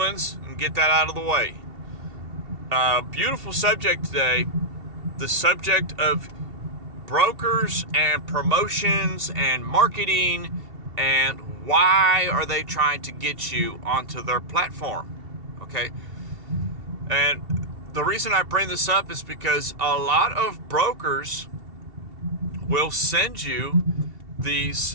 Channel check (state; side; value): late; left; 2.7 ms